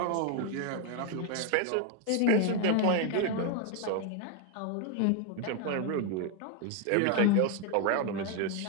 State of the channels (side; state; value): both; different; correlation 0.01